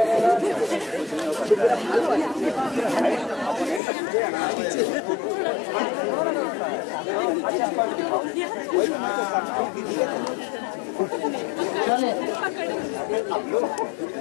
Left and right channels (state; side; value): drops out; right; at 3.8 s